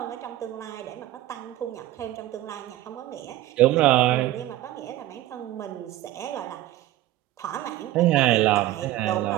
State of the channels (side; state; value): left; quieter; 15.1 dB